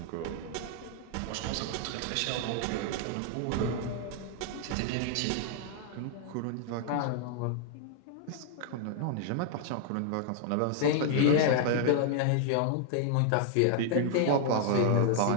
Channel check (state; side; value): different; both; correlation 0.00